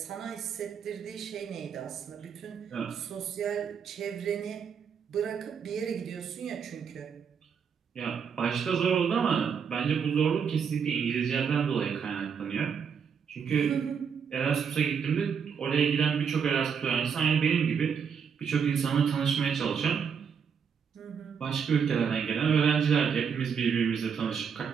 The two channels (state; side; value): quieter; left; 6.9 dB